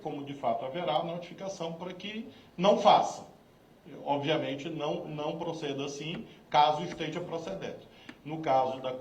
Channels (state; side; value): identical; both; correlation 1.00